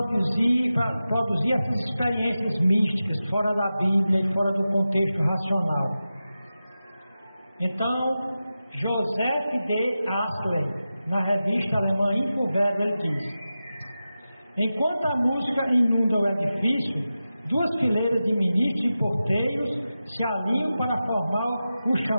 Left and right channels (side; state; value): both; inverted; correlation -0.93